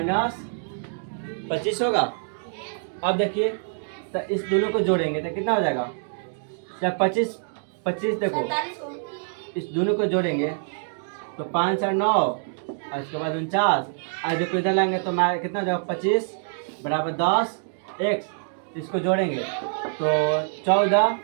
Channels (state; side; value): silent; left; digital silence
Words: 25 होगा। अब देखिए, तो इस दोनों को जोड़ेंगे तो कितना हो जाएगा, जब 25 देखो इस दोनों को जोड़ेंगे तो 5 और 9 और इसके बाद 49, और देखो इधर लाएंगे तो कितना हो जाएगा 25 बराबर 10x, इसको जोड़ेंगे तो 14